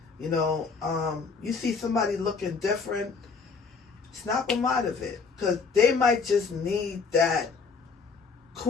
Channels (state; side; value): quieter; right; 5.0 dB